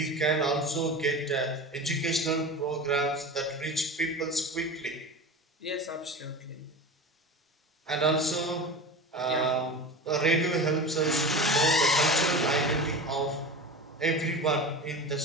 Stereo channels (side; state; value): both; normal; correlation 0.30